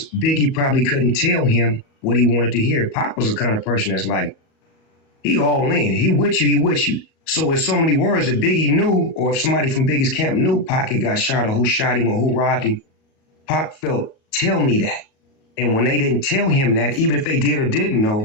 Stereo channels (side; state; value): right; late; 37 ms